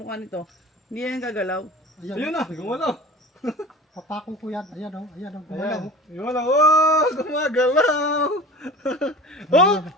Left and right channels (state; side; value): normal; both; correlation 0.37